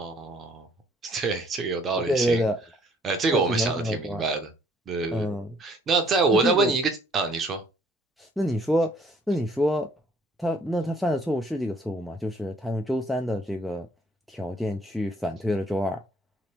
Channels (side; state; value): both; normal; correlation 0.61